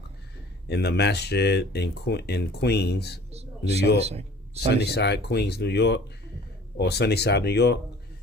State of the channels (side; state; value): both; normal; correlation 0.48